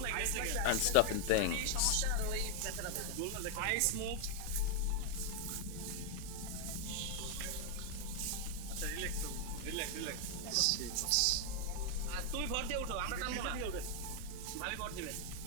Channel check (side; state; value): both; different; correlation 0.00